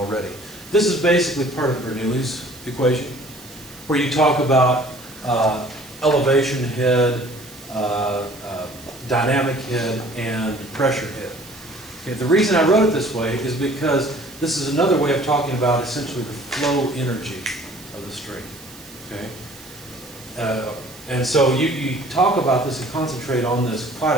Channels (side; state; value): right; noise; hiss, 19 dB below the sound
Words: This is basically part of Bernoulli's equation, where you talk about elevation head, dynamic head, and pressure head. Okay, the reason I wrote it this way is because this is another way of talking about essentially the flow energy of the stream. Okay? And so you talk about this and concentrate on this